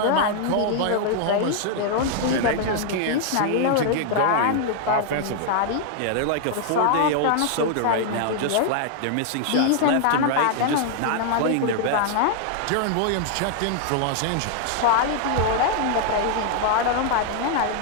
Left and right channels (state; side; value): different; both; correlation 0.00